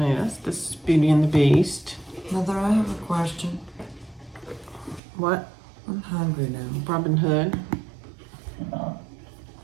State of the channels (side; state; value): left; drops out; at 5.0 s